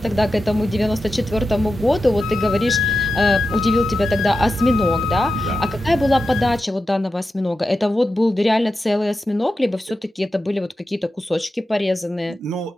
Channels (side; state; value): both; normal; correlation 0.90